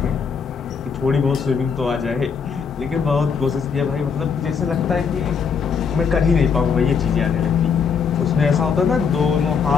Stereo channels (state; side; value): quieter; right; 6.1 dB